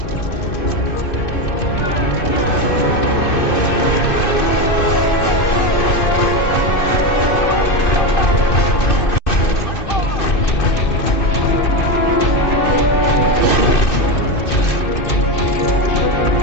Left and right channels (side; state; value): right; late; 2.6 ms